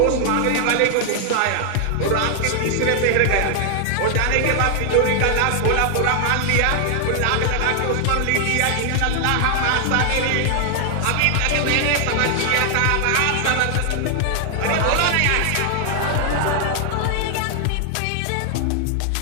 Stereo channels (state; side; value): different; both; correlation 0.00